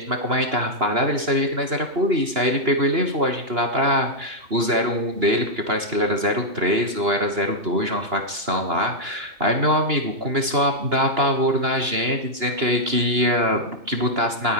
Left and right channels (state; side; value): late; left; 2.9 ms